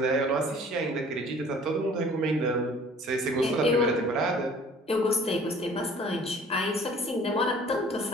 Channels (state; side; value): normal; both; correlation 0.51